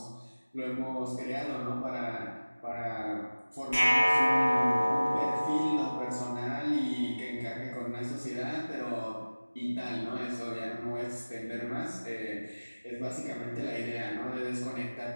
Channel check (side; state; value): both; inverted; correlation -1.00